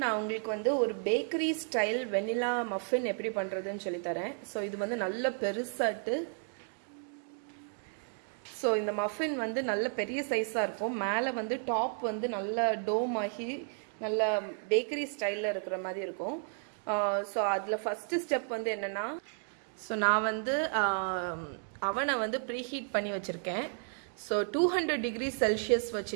நான் உங்களுக்கு வந்து ஒரு பேக்கரி ஸ்டைல் வெனிலா மஃபின் எப்படி பண்ணுறதுன்னு சொல்லித்தரேன். ஸோ இது வந்து நல்ல பெருசாட்டு. ஸோ இந்த மஃபின் வந்து நல்ல பெரிய சைஸாக இருக்கும். மேலே வந்து டாப் வந்து நல்ல டோம் ஆகி நல்ல பேக்கரி ஸ்டைலில் இருக்கிற மாதிரி இருக்கும். ஸோ அதில் ஃபஸ்ட்டு ஸ்டெப் வந்து என்னென்னா, ஸோ நான் வந்து அவனை வந்து ப்ரீஹீட் பண்ணி வச்சுருக்கேன். ஸோ 200 டிகிரி செல்சியஸ்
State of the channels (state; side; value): silent; left; 56 dB below the other